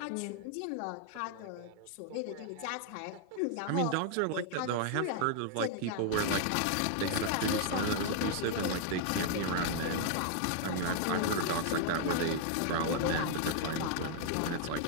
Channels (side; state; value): both; different; correlation 0.00